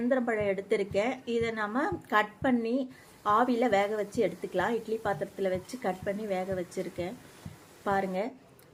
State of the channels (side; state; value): both; identical; correlation 1.00